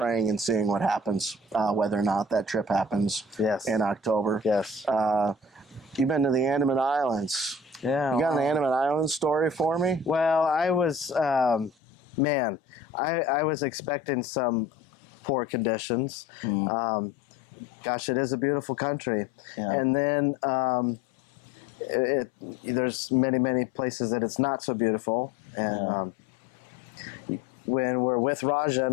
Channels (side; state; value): right; drops out; at 11.7 s